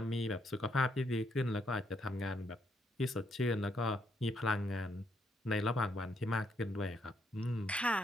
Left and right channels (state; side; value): normal; both; correlation 0.74